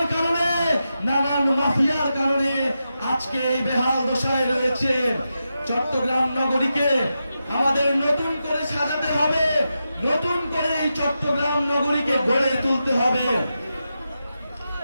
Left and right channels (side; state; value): both; inverted; correlation -0.88